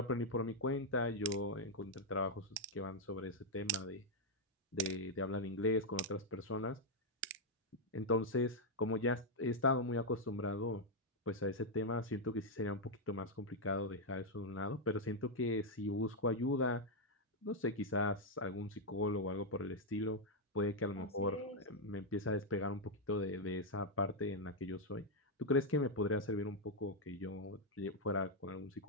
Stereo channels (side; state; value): both; normal; correlation -0.01